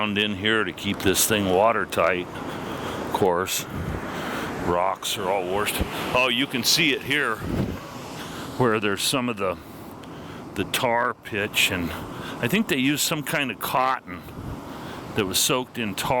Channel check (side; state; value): both; identical; correlation 1.00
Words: in here to keep this thing watertight. Of course, rocks are all washed. Oh, you can see it here where there's some of the tar pitch, and I think they used some kind of cotton that was soaked in